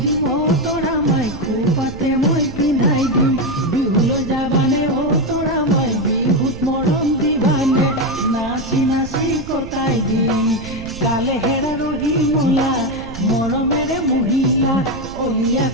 দিম অ তৰা মাই খোপাতে মই পিন্ধাই দিম বিহুলৈ যাবানে অ তৰা মাই বিহুত মৰম দিবানে নাচি নাচি কটাই দিম কালে হেৰা ৰহি মলা মৰমেৰে মহিলা অলিয়া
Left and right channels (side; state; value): right; noise; rumble, 14 dB below the sound